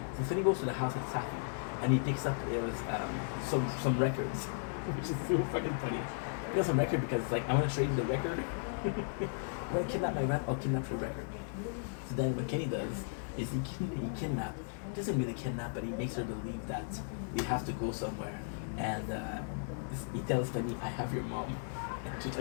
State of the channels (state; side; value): silent; right; digital silence